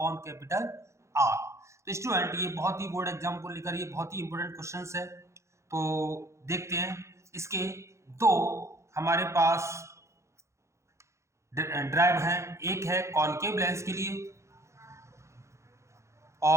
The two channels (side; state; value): left; late; 0.14 ms